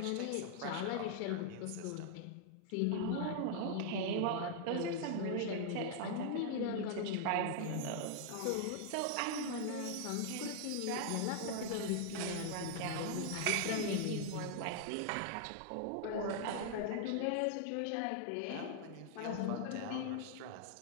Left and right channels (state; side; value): different; both; correlation -0.01